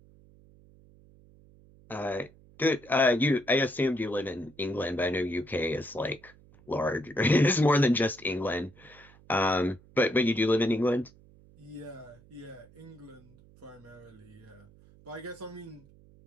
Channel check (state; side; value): noise; right; hum, 26 dB below the sound